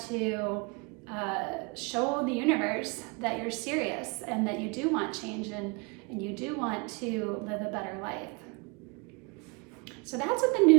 to show the universe that you're serious and that you do want change, and you do want to live a better life. So that's what the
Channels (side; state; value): left; quieter; 30.1 dB